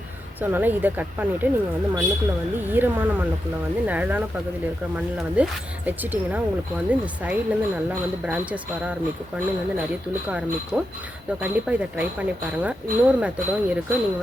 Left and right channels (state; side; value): normal; both; correlation 0.87